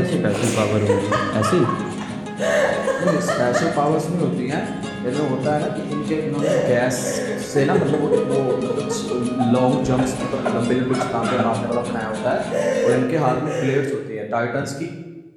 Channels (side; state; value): both; identical; correlation 1.00